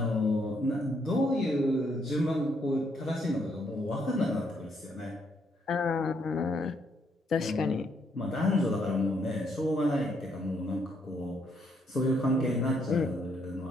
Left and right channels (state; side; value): normal; both; correlation 0.73